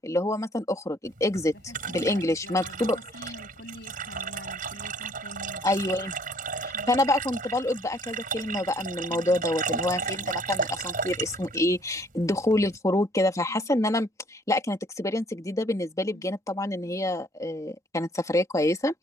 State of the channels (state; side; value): normal; both; correlation 0.61